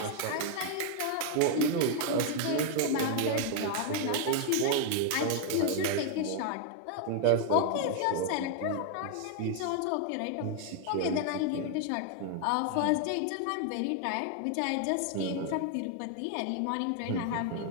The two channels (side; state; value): both; different; correlation 0.00